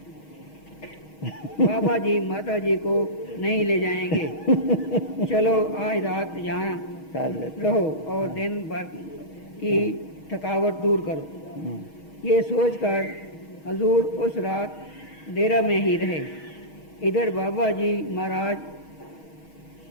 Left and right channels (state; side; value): late; right; 6.3 ms